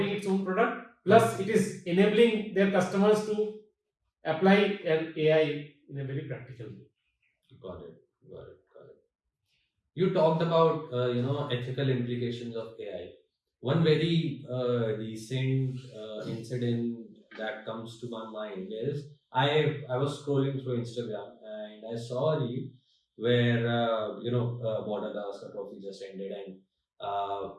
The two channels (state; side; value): identical; both; correlation 1.00